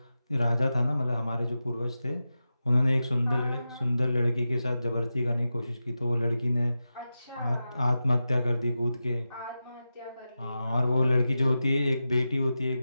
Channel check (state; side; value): inverted; both; correlation -0.92